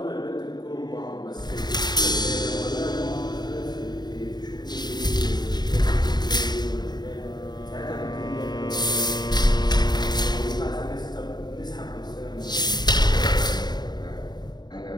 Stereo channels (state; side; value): late; right; 0.20 ms